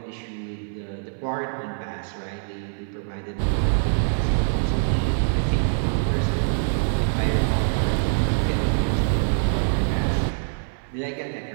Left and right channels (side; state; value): left; silent; 60 dB below the other